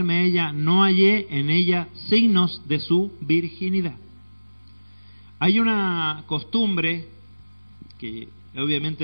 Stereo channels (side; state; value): both; inverted; correlation -1.00